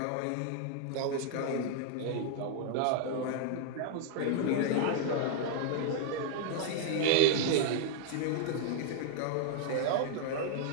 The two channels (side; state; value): both; different; correlation 0.00